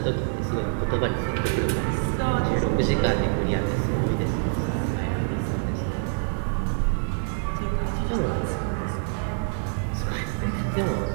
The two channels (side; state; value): left; silent; digital silence